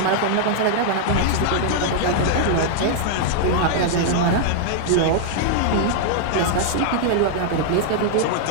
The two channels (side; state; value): both; different; correlation -0.01